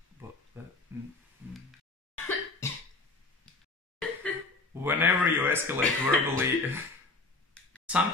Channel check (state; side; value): quieter; right; 3.5 dB